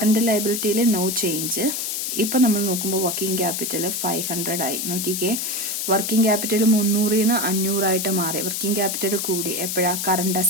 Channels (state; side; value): noise; left; hiss, 2 dB below the sound